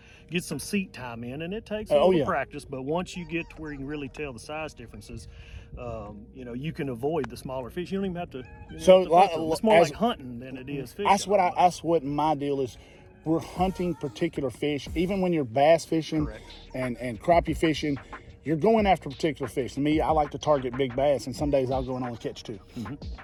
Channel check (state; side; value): identical; both; correlation 1.00